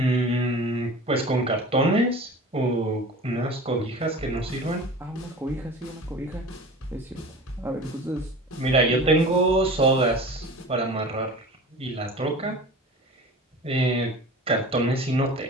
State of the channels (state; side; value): normal; both; correlation 0.38